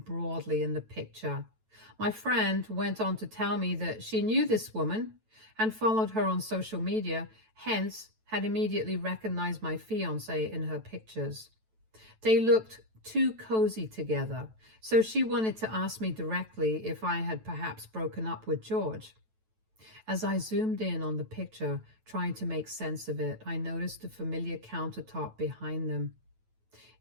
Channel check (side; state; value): left; late; 9.1 ms